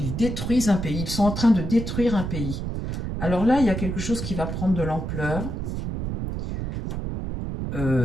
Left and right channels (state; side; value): noise; right; rumble, 4 dB below the sound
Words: détruisent un pays. Ils sont en train de détruire un pays. Alors là, il y a quelque chose qui va prendre de l'ampleur.